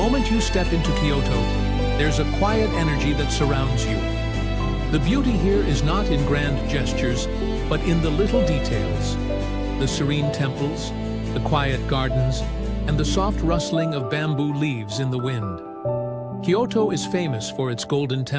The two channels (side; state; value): both; identical; correlation 1.00